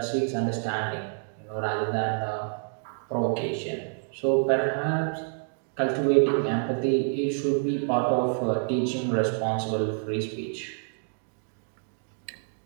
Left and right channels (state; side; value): silent; left; digital silence